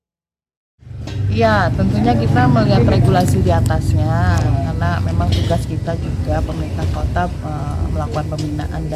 Ya, tentunya kita melihat regulasi di atasnya, karena memang tugas kita juga pemerintah kota melakukan pembinaan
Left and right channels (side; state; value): both; identical; correlation 1.00